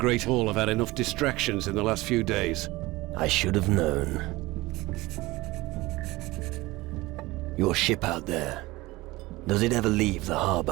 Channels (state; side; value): quieter; left; 20.3 dB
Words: Hall have had enough distractions in the last few days. I should have known. Your ship out there, does it ever leave the